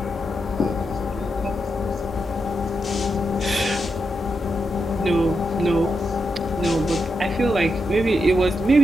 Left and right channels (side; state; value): both; normal; correlation 0.85